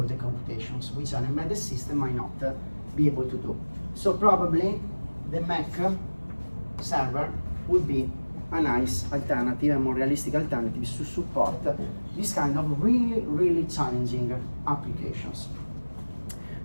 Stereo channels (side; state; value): both; inverted; correlation -1.00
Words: the computations, which an embedded system might not be able to do. So probably the Mac server would be a nice alternative, a more realistic alternative to support this kind of really challenging applications.